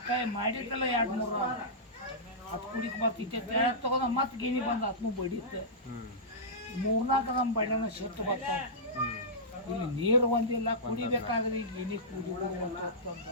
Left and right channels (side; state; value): both; normal; correlation -0.16